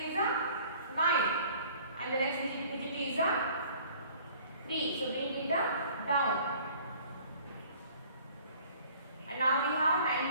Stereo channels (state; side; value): inverted; both; correlation -0.52